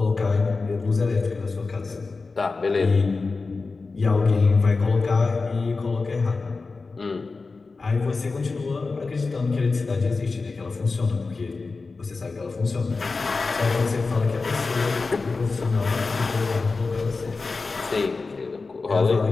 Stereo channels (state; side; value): quieter; right; 4.0 dB